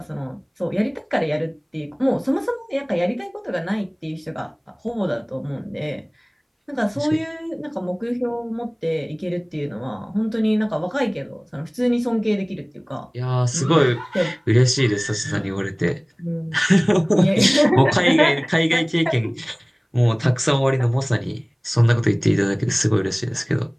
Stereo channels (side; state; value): both; identical; correlation 1.00